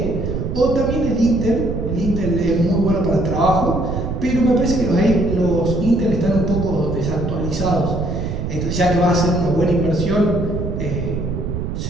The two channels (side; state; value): right; noise; rumble, 4 dB below the sound